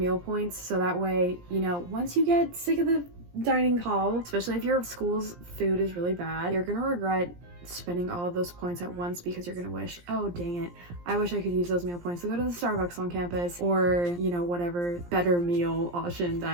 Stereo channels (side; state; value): left; late; 17 ms